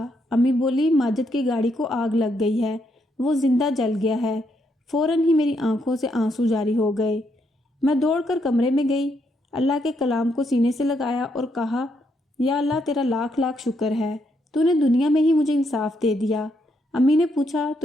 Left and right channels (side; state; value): both; normal; correlation 0.76